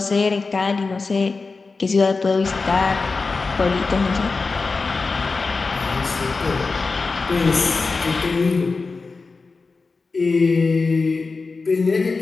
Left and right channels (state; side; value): quieter; right; 4.1 dB